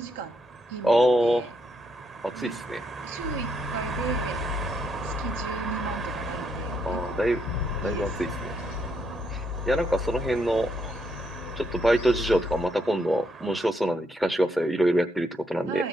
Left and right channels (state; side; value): normal; both; correlation 0.76